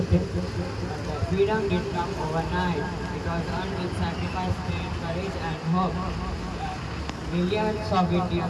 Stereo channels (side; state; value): both; identical; correlation 1.00